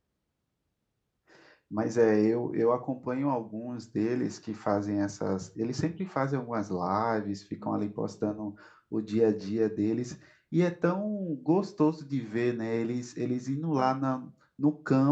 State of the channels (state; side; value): identical; both; correlation 1.00